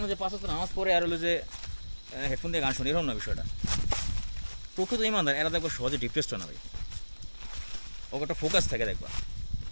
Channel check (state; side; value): inverted; both; correlation -1.00